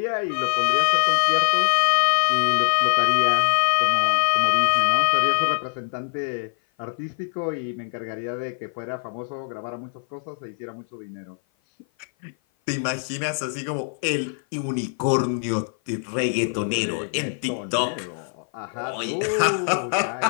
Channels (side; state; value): right; silent; 56 dB below the other